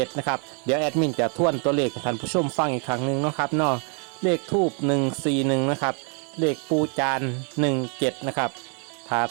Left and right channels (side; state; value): left; quieter; 39.4 dB